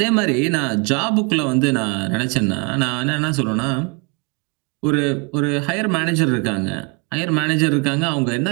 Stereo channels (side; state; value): left; quieter; 31.8 dB